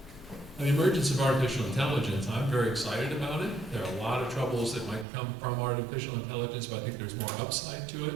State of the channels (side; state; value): left; drops out; at 5.1 s